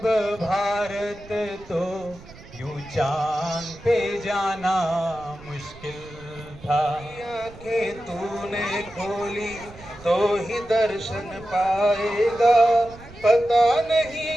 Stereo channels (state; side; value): noise; right; rumble, 19 dB below the sound